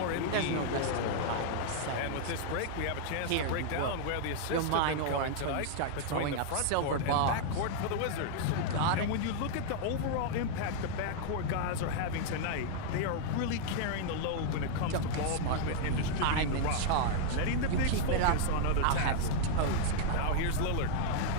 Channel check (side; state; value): both; different; correlation -0.01